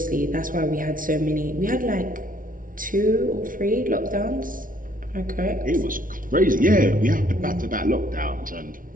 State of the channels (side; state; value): left; late; 0.39 ms